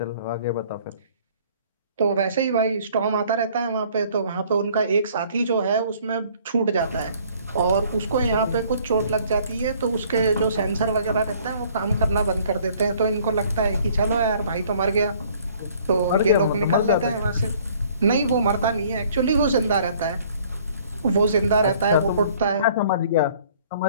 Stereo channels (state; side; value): inverted; both; correlation -0.57